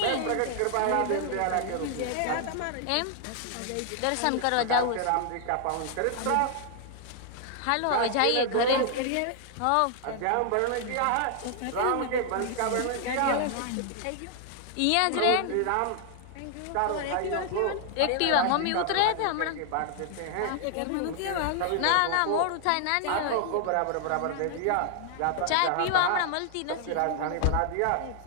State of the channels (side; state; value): both; different; correlation 0.00